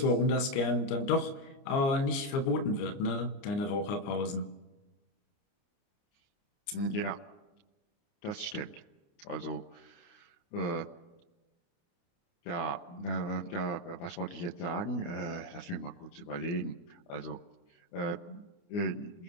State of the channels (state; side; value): late; right; 29 ms